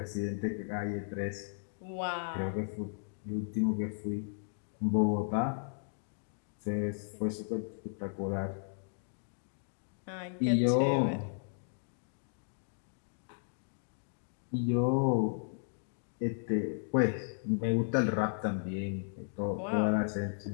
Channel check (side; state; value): right; silent; digital silence